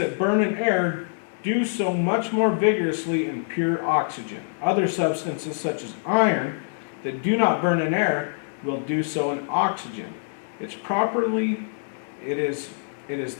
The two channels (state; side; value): silent; right; digital silence